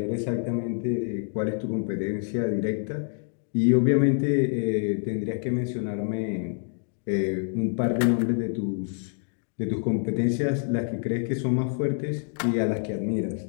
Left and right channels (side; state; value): right; silent; 60 dB below the other